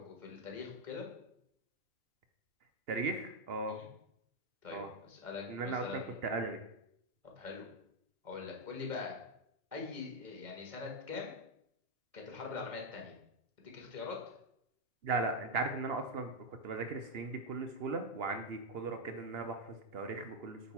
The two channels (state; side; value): late; left; 2.8 ms